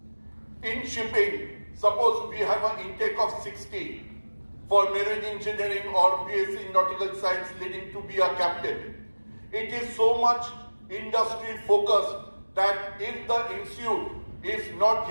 In shipping, suppose we have an intake of 60 for marine engineering or BSc in nautical science leading to be a captain. It is so much industry focused that if the institute is not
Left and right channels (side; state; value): both; inverted; correlation -1.00